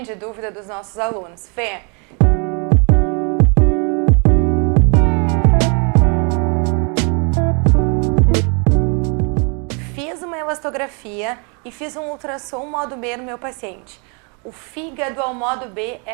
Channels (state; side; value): quieter; left; 36.0 dB